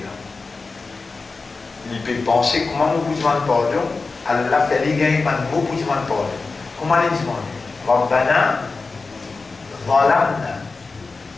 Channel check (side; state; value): right; quieter; 4.0 dB